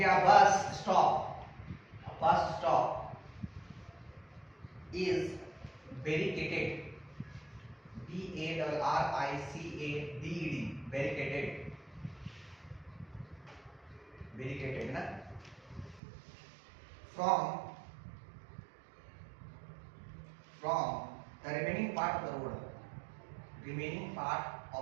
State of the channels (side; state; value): left; drops out; at 16.0 s